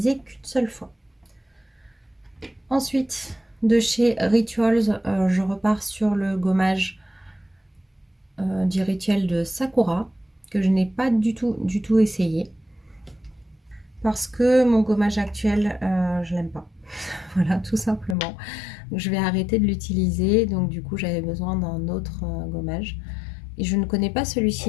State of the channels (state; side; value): drops out; right; at 18.2 s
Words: qu'une seule fois. Ensuite de chez Rituals, je repars sur le gommage du rituel de Sakura que je n'ai pas du tout essayé. Parce que mon gommage actuel, je l'aime pas. Voilà, tout simplement. Donc, je vais arrêter de l'utiliser. Donc du coup, j'avais besoin d'un autre gommage. Et je ne connais pas